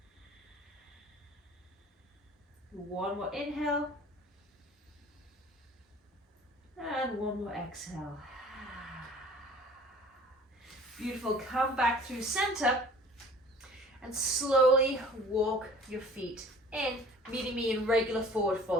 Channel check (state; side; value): normal; both; correlation 0.48